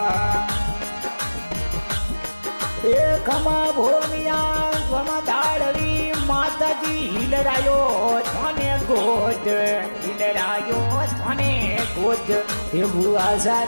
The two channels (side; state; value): both; inverted; correlation -1.00